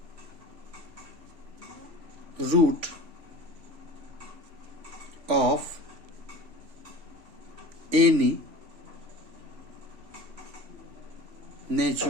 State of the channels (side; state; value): left; late; 3.4 ms